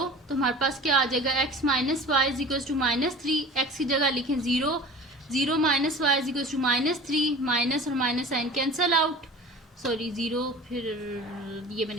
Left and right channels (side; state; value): both; normal; correlation 0.40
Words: तो हमारे पास क्या आ जाएगा x minus Y is equal to -3, x की जगह लिखें 0, 0 minus Y is equal to -3, minus और minus sign cancel out, sorry 0 फिर ये